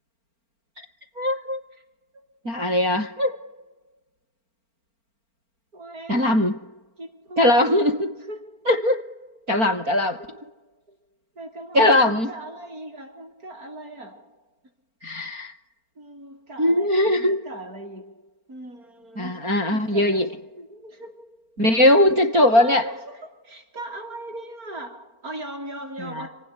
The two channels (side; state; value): left; late; 4.4 ms